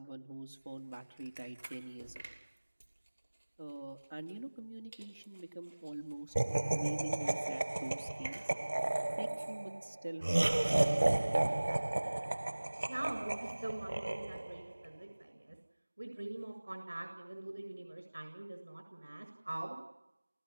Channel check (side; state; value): both; inverted; correlation -1.00